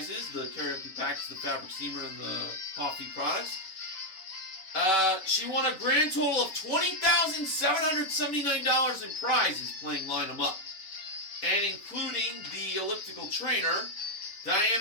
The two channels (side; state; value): right; late; 5.3 ms